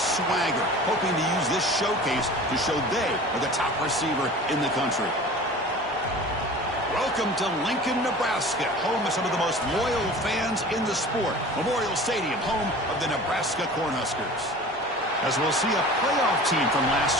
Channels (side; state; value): both; normal; correlation 0.40